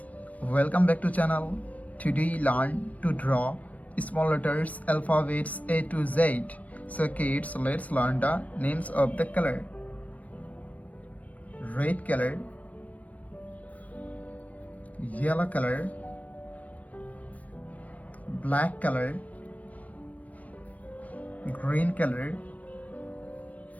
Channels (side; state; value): right; late; 0.070 ms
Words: welcome back to channel. Today learn to draw small letters alphabets A to Z. So kids, let's learn the names of the color. Red color, yellow color, black color, green color,